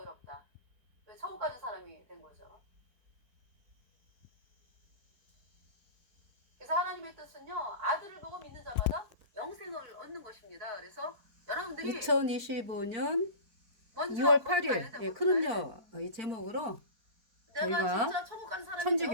천국 가는 사람이 된 거죠. 그래서 하나님의 뜻은요, 아들을 보고 믿는 자마다 영생을 얻는 것입니다. 그래서 여러분들이 2025년 먼저 2월 거기 가야 8일 돼, 예, 거기 가야 돼. 크름녀 이 제목으로 내가 저희가 진짜 천국 간 사람이 천주교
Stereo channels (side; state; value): left; late; 4.4 ms